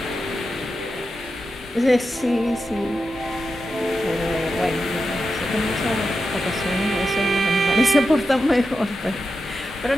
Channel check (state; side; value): normal; both; correlation 0.89